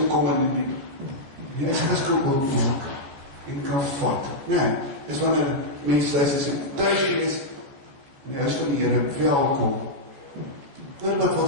kom, en die huis kan oopmaak, en kan vat. Nee, is wanneer mens thuis is, en thuis wees, en die huis van die Here, welkom. Hoor wat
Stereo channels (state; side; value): late; left; 14 ms